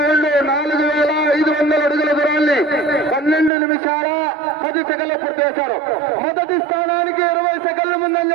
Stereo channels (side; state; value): left; drops out; at 3.5 s